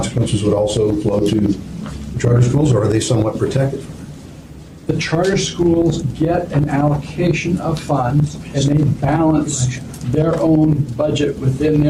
would also flow to the charter schools, or are they somewhat protected from that? The charter schools get an allocation of funds, and they balance their own budget within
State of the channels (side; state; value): both; identical; correlation 1.00